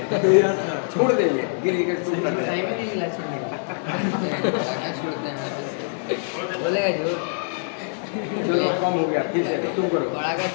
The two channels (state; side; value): silent; right; digital silence